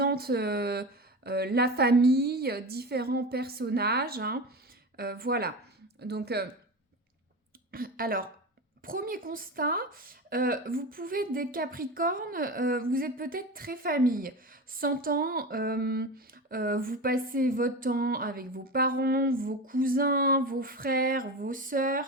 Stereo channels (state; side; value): normal; both; correlation 0.26